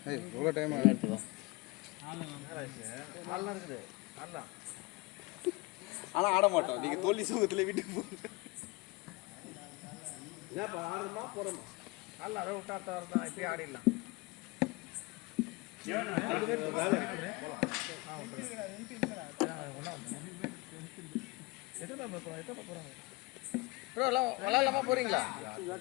ஏய் இவ்வளோ டைம் ஆகுது நல்லா இருக்குது நல்லா ஆனா ஆட மாட்டோம் நீங்க தோல்வி சுகத்துல வீட்டுக்கு போங்க நல்லா அதை விட்டாத்த வரதான் இப்பயே ஆடிடலாம் எத்தனை போறாங்க ப்ரோ எல்லாம் விளாட்லாமா போறீங்களா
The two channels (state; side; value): quieter; right; 24.6 dB